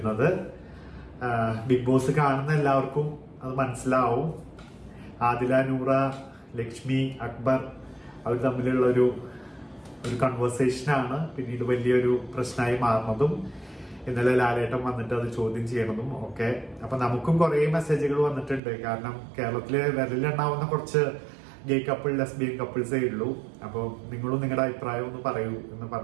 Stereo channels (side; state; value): left; drops out; at 18.6 s